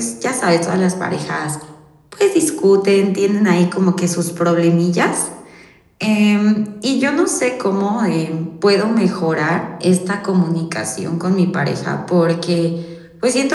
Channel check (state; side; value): identical; both; correlation 1.00